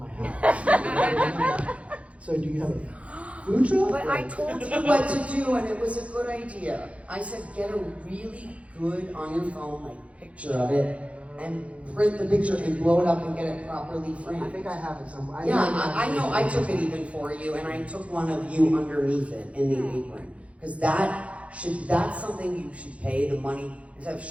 house? So do you have a food truck? But I told you what to do, and it was a good idea. I said, get a really good on your phone, like picture of it, and print the picture and blow it up and get it properly I framed. think I have it somewhere. Yeah, I know. I took it even for you, and I took one of you underneath it in the apron, because that's something you should pay the money instead of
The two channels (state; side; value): late; left; 0.063 ms